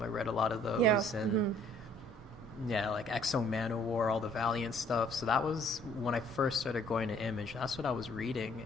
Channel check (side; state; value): both; normal; correlation 0.60